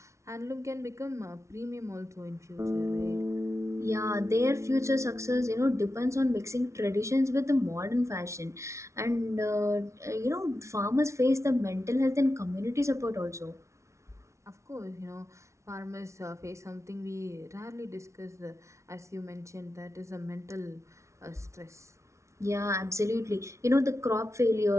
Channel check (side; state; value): left; late; 0.14 ms